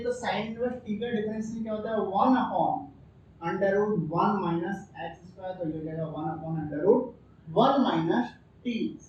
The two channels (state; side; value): identical; both; correlation 1.00